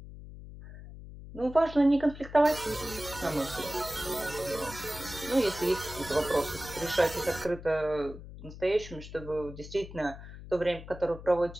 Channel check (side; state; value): left; noise; hum, 14 dB below the sound